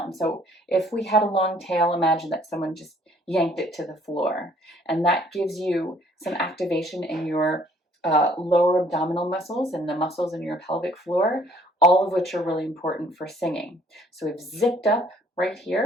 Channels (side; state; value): both; normal; correlation 0.60